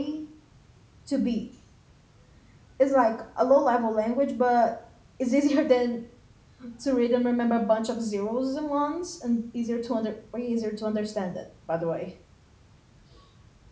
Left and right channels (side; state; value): both; identical; correlation 1.00